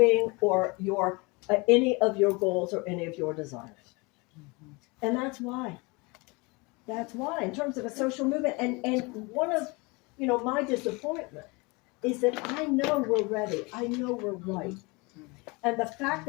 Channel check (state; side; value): quieter; right; 26.9 dB